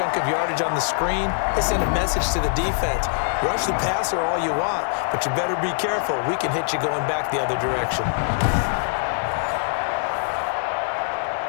of yardage on the screen, they sent a message to the defense. Rush the passer all you want, but you better be careful. We can hit you going back the other direction.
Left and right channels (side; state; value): right; silent; digital silence